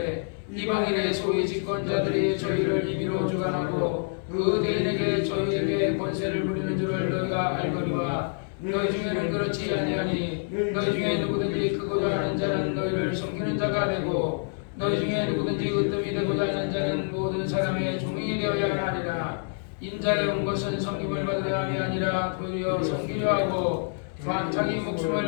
이방인의 소위 집권자들이 저희를 임의로 주관하고 그 대인에게 저희에게 권세를 부리는 줄을 너희가 알거니와 너희 중에는 그렇지 아니하니 너희 중에 누구든지 크고자 하는 자는 너희를 섬기는 자가 되고 너희 중에 누구든지 으뜸이 되고자 하는 자는 모든 사람의 종이 되어야 하리라. 인자에 온 것은 섬김을 받으려 함이 아니라 도리어 섬기려 하고 또한 자기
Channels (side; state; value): right; silent; digital silence